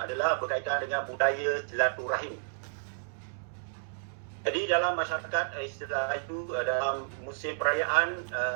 adalah berkaitan dengan budaya silaturahim. Jadi dalam masyarakat istilah itu dalam musim perayaan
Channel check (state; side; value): silent; left; digital silence